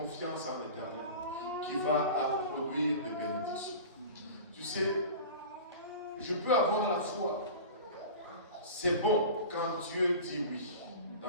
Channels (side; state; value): both; inverted; correlation -0.35